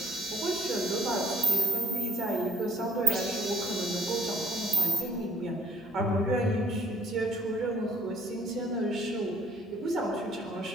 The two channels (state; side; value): normal; both; correlation 0.61